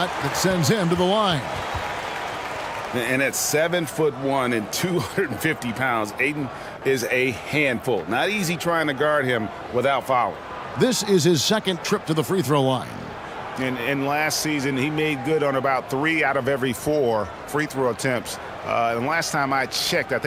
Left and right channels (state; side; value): identical; both; correlation 1.00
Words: that sends him to the line. And at 7'1" and 250 pounds, Ayton is a handful. Not easy trying to guard him without fouling. This is his 2nd trip to the free throw line. And last season, he made good on about 3 out of every 4 free throw attempts. And last time I checked, I